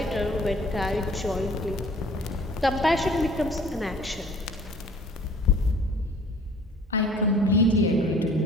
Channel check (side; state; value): both; normal; correlation 0.51